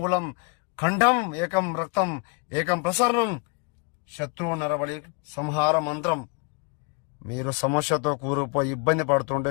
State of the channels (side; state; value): right; quieter; 33.0 dB